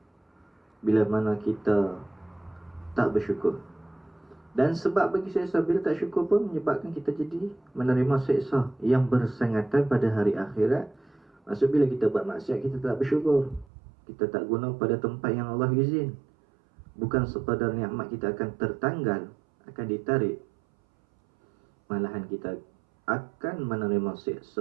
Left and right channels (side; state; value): left; drops out; at 13.7 s